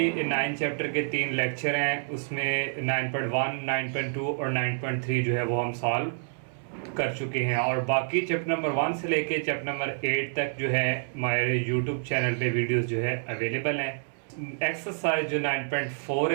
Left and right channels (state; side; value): silent; left; 59 dB below the other